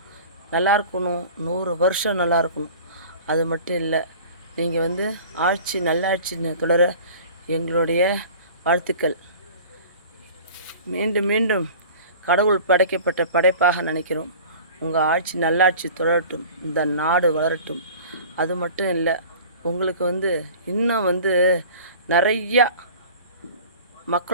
நல்லா இருக்கணும், 100 வருஷம் நல்லா இருக்கணும். அது மட்டும் இல்லை, நீங்கள் ஆட்சி நல்லாட்சி தொடர எங்களுடைய வாழ்த்துக்கள். மீண்டும் மீண்டும் கடவுள் படைக்கப்பட்ட படைப்பாக நினைக்கிறோம். உங்கள் ஆட்சி நல்லாட்சி தொடரட்டும், இந்த நாடு வளரட்டும். அது மட்டும் இல்லை, உங்களுக்கு இன்னும் நிறையா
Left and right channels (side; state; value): both; inverted; correlation -0.42